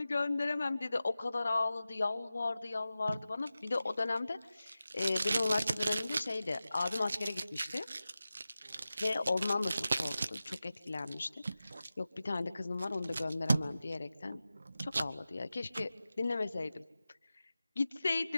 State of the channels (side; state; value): both; inverted; correlation -0.95